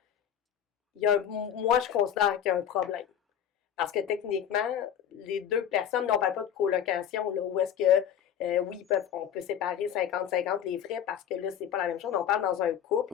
moi, je considère qu'il y a un problème. Parce que techniquement, les deux personnes, on ne parle pas de colocation, là, où est-ce que, oui, on peut séparer 50-50 les frais parce que là, c'est pas la même chose. On parle dans un couple,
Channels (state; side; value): quieter; right; 9.4 dB